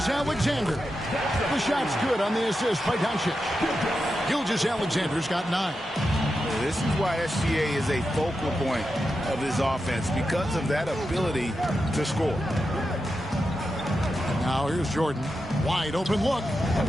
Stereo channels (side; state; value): both; normal; correlation 0.89